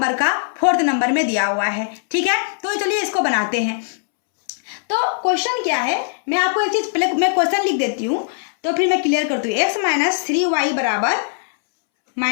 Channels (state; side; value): silent; right; 66 dB below the other